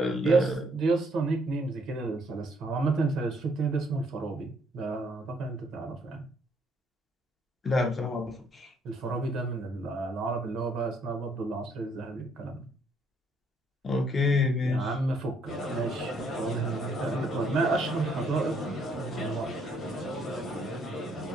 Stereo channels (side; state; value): both; normal; correlation 0.68